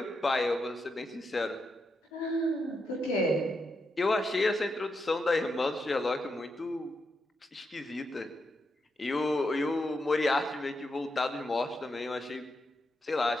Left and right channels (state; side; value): normal; both; correlation 0.84